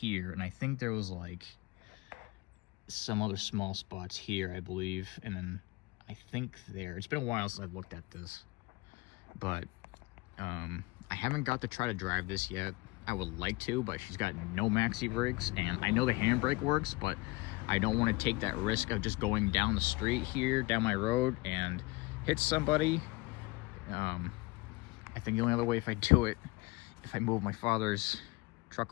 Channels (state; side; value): quieter; right; 23.2 dB